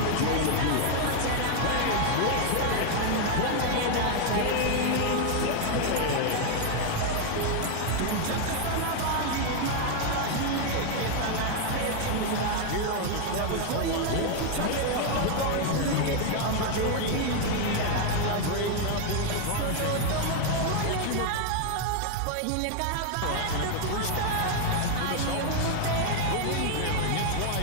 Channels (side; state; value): both; different; correlation 0.01